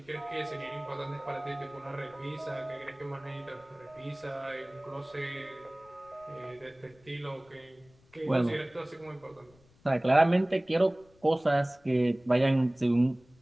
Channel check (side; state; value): left; noise; rumble, 29 dB below the sound